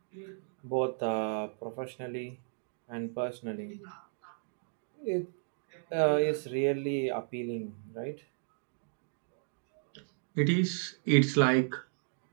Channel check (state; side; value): silent; left; digital silence